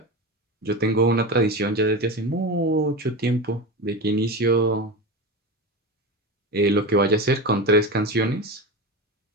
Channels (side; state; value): both; normal; correlation 0.23